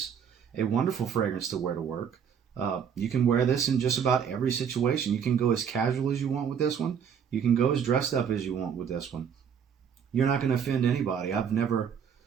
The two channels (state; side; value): quieter; left; 7.6 dB